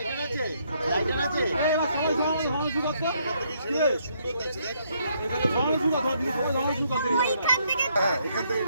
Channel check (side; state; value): both; inverted; correlation -0.71